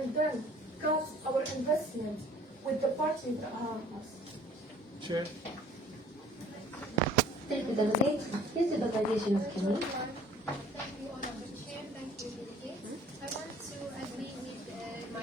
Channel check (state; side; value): normal; both; correlation 0.52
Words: then cut our investment with the parties that harm us. Chair. Thank you, Delegate. Here's the delegation of Kenya. Thank you, Honorable Chair. Thank you, delegates. I want to agree with